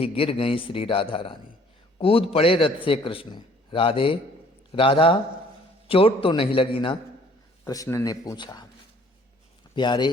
गिर गई श्री राधा रानी। कूद पड़े रथ से कृष्ण। राधे, राधा, चोट तो नहीं लगी ना? कृष्ण ने पूछा। प्यारे,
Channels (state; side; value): normal; both; correlation 0.57